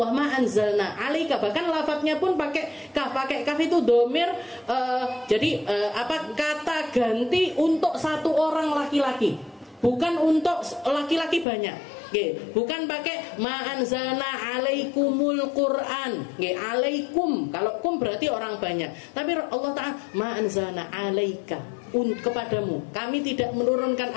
ma anzalna 'alaika, bahkan lafadznya pun pakai kaf itu domir, jadi kata ganti untuk satu orang laki-laki, bukan untuk laki-laki banyak. Bukan pakai ma anzalna 'alaikumul Qur'an. Alaikum, kalau kum berarti orang banyak. Tapi Allah Ta'ala ma anzalna 'alaika, kepadamu. Kami tidak menurunkan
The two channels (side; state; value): right; drops out; at 11.5 s